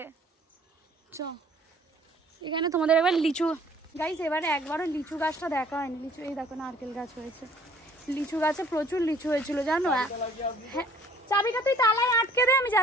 চ এখানে তোমাদের এবার লিচু গাইস, এবারে একবারও লিচু গাছটা দেখা হয়নি। লিচু এই দেখো নারকেল গাছ হয়েছে, লিচু গাছে প্রচুর লিচু হয়েছিল জানো। হ্যাঁ, চাবিটা তুই তালায় আটকে দে, আমি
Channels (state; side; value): normal; both; correlation 0.55